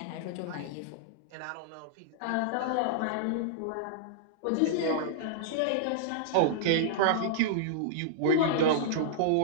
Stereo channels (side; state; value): both; different; correlation -0.02